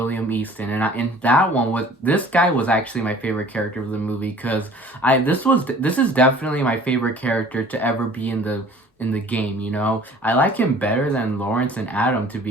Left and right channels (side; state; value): both; normal; correlation 0.49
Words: Easton. And that one was, this guy was actually my favorite character of the movie, because this is definitely my favorite character to ever be in the game, you know? I like him better than Lawrence and Adam, to